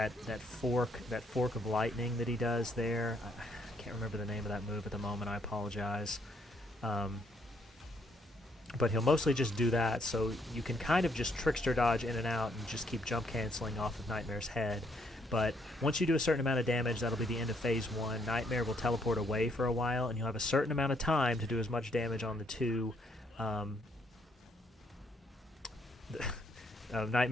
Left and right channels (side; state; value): both; normal; correlation 0.71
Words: fork of lightning that he does there. I can't remember the name of that move at the moment. I apologize. But he'll mostly just do that, so you can kind of just trickster dodge in and out and just keep jump canceling off of Nightmare's head. But once you do a certain amount of damage, that'll be the end of phase 1. Nightmare will teleport away for a while, and you'll have a certain amount of time to do as much damage on the 2